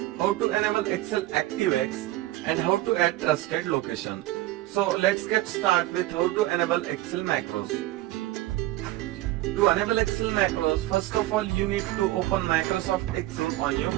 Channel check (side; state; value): left; quieter; 16.8 dB